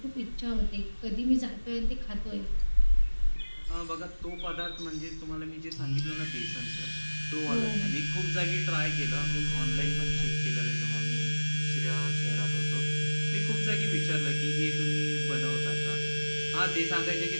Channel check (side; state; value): both; inverted; correlation -1.00